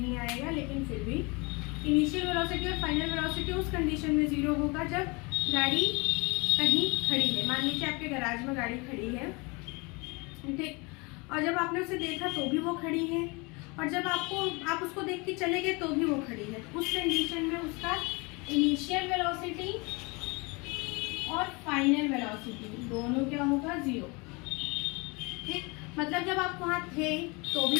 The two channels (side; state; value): right; quieter; 27.9 dB